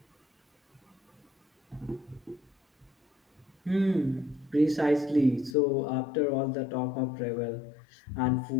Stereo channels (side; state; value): right; drops out; at 5.6 s